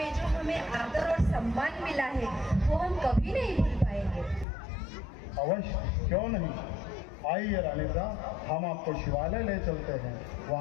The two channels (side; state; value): right; drops out; at 4.5 s